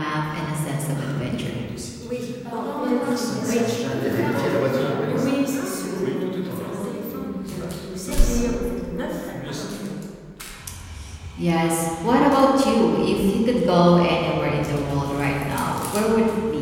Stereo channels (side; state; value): both; identical; correlation 1.00